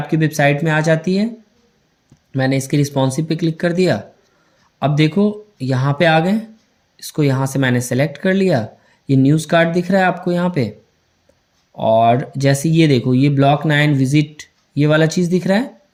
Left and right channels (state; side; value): identical; both; correlation 1.00